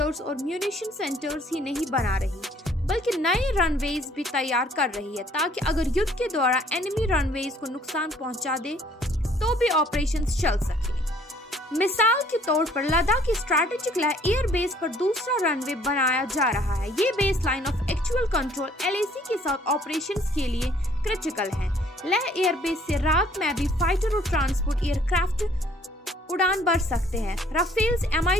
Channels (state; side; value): normal; both; correlation 0.60